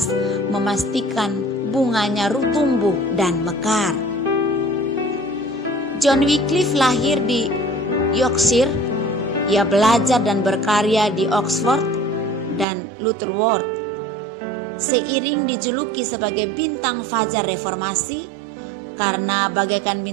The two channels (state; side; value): drops out; left; at 12.7 s